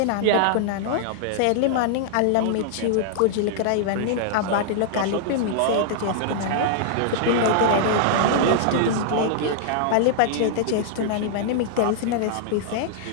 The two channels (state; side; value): different; both; correlation -0.01